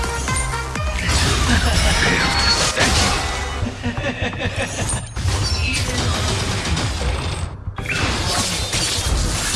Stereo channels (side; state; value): both; identical; correlation 1.00